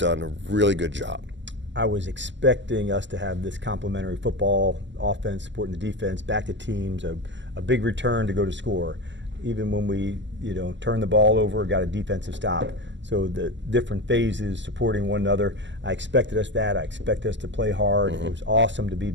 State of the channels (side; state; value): left; late; 0.53 ms